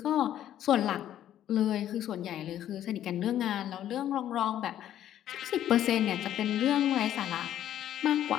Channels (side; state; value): right; quieter; 11.5 dB